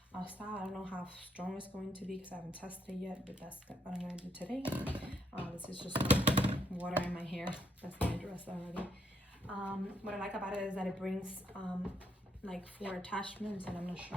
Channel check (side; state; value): both; normal; correlation 0.75